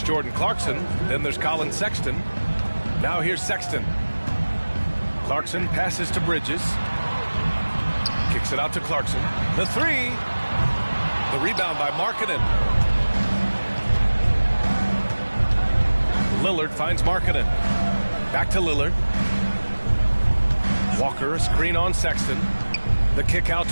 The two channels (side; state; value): both; inverted; correlation -1.00